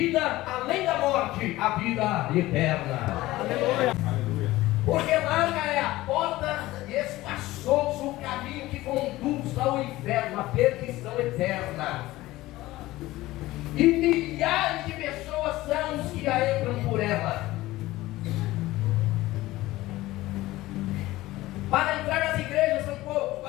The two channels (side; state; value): right; quieter; 17.6 dB